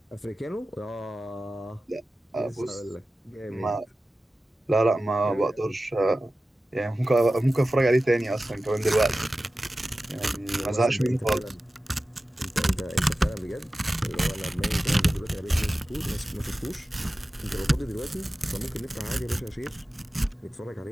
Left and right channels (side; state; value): both; normal; correlation 0.95